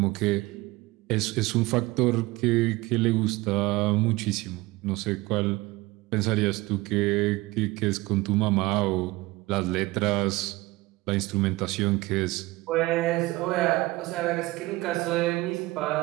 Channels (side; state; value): left; quieter; 20.7 dB